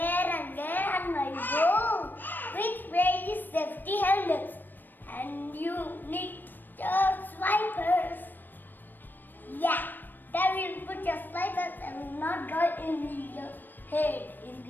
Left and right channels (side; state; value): right; late; 0.092 ms